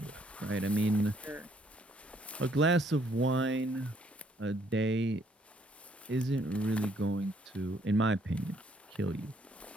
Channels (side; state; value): both; normal; correlation 0.67